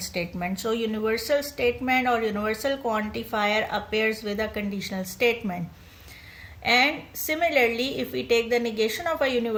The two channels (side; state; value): both; identical; correlation 1.00